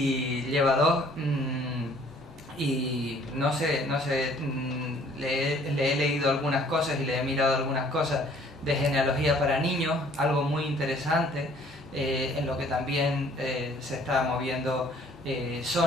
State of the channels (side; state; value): right; noise; hum, 25 dB below the sound